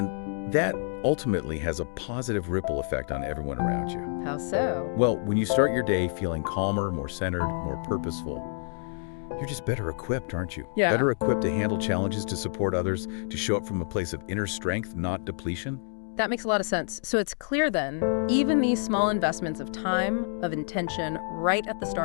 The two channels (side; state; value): right; silent; digital silence